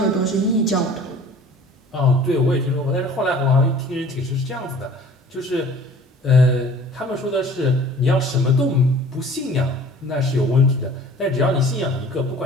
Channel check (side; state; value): both; normal; correlation 0.47